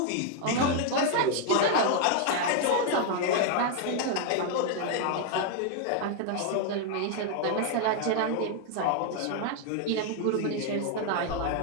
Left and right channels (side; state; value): both; different; correlation 0.00